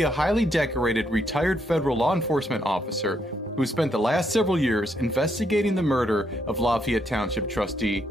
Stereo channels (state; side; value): normal; both; correlation 0.76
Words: a highly decorated retired federal law enforcement officer who spent the last several years investigating the murder of Lafayette Township trustee